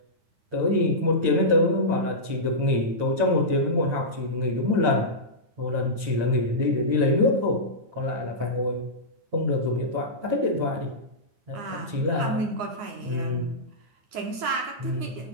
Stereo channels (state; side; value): late; left; 9.7 ms